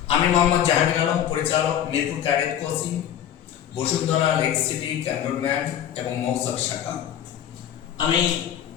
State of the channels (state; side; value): quieter; right; 10.3 dB